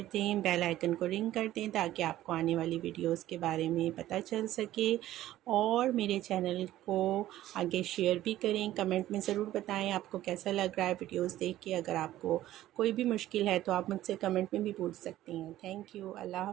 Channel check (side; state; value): left; quieter; 14.2 dB